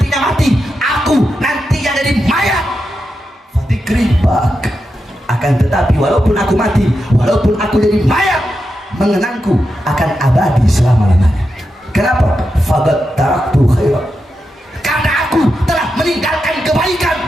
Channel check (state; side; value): normal; both; correlation 0.88